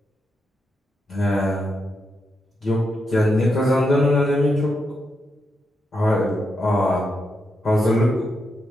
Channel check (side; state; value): both; normal; correlation 0.84